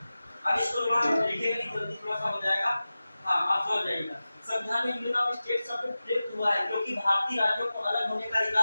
अब इसको थोड़ा लिखेंगे नहीं, जल्दी थोड़ा सा हो जाएगा। हाँ, आप समझ जाइएगा। संविधान में यूनियन ऑफ स्टेट शब्द प्रयुक्त हुआ है क्योंकि भारतीय राज्यों को अलग होने का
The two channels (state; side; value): inverted; both; correlation -0.95